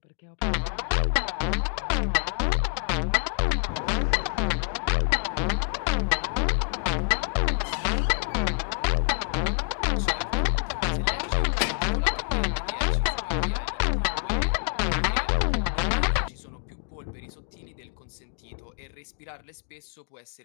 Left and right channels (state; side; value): silent; right; digital silence